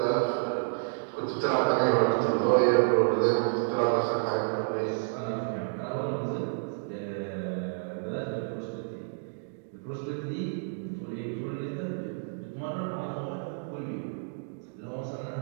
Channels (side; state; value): left; silent; digital silence